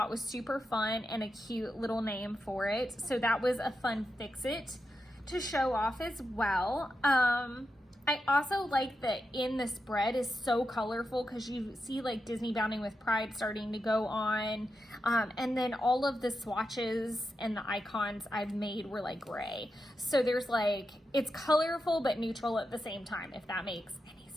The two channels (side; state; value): both; normal; correlation 0.88